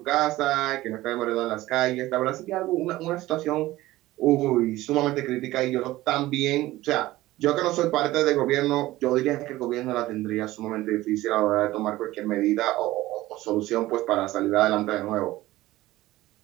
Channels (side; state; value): left; quieter; 17.1 dB